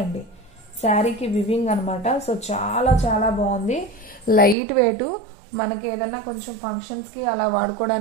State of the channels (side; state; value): left; drops out; at 4.5 s